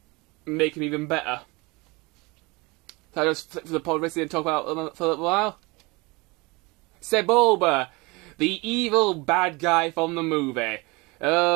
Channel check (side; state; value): left; quieter; 25.5 dB